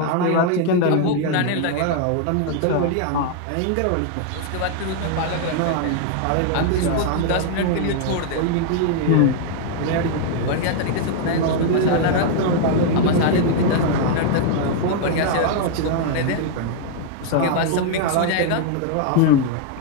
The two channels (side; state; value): both; different; correlation 0.00